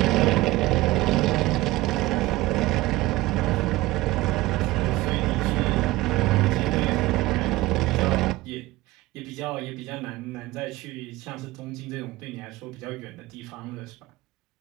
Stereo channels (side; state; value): left; quieter; 18.7 dB